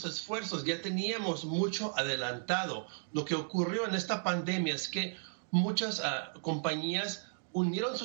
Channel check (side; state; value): left; silent; digital silence